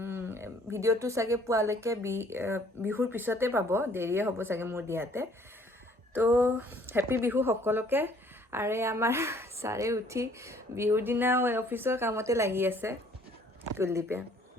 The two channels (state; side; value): normal; both; correlation 0.59